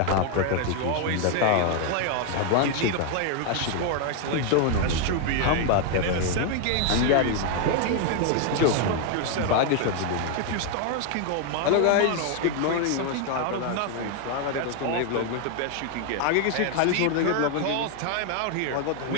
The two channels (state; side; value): different; both; correlation 0.01